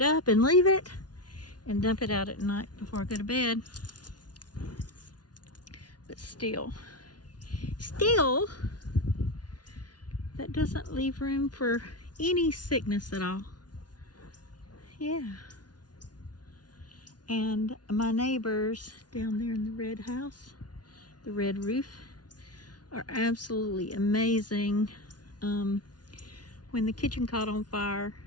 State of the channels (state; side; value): late; right; 0.69 ms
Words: up and leave it and dump it out at night before I go to bed. But still, that doesn't leave room for any sickness at all. Yeah. And my neighbors down there in the red house, the red roof, are absolutely amazing. When the kitchen caught on fire,